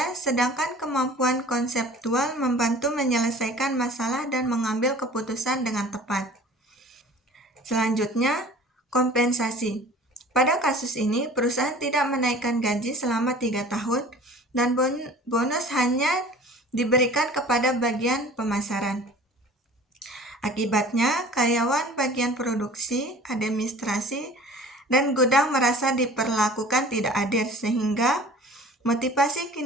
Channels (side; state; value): both; normal; correlation 0.45